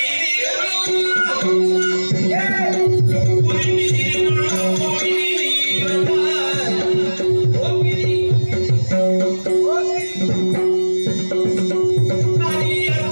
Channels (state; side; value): inverted; both; correlation -1.00